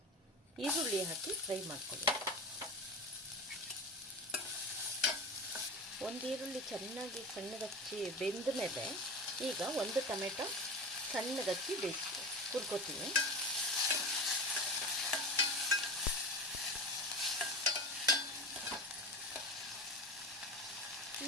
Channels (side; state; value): both; normal; correlation 0.28